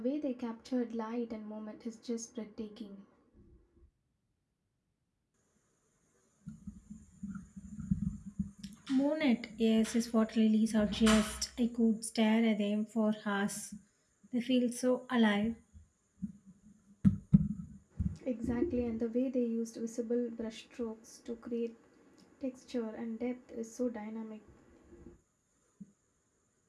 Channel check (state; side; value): identical; both; correlation 1.00